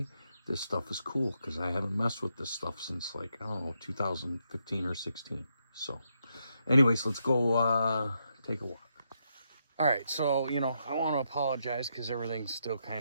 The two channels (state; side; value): inverted; both; correlation -0.80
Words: This stuff is cool, because I haven't messed with this stuff since like, I don't know, 2015 or 16. So anyways, let's go take a walk. All right, so, you know, I want to apologize because everything's still